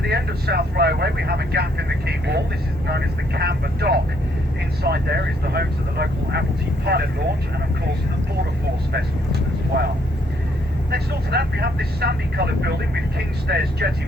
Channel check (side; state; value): both; normal; correlation 0.70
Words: the end of South Railway, we have a gap in the quay wall. This is known as the Camber Dock. Inside there is the home to the local Admiralty pilot launch, and of course the Border Force vessels as well. Next door to that, we have this sandy coloured building with King's Stairs Jetty